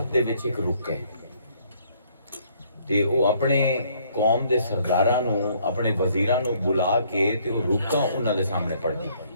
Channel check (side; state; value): both; inverted; correlation -0.65